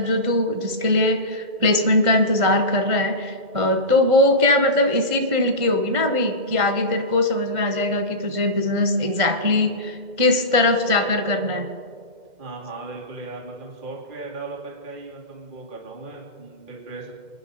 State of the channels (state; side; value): late; left; 2.1 ms